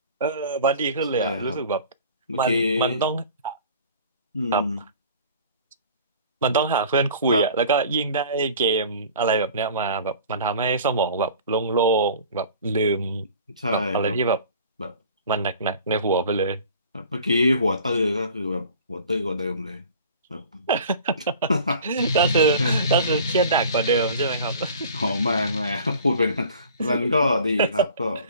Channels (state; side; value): inverted; both; correlation -0.45